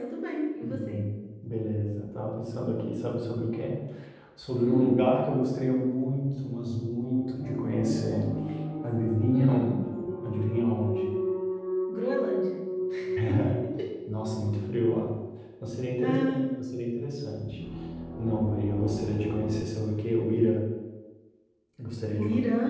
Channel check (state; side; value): identical; both; correlation 1.00